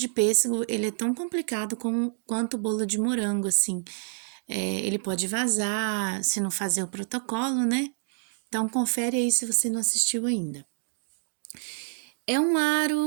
pêssego, ele é tão complicado quanto o bolo de morango, assim. Ele pode vazar se não fazer o protocolo, né? Então, confere aí se você não assistiu ainda. É um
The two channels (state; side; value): silent; left; digital silence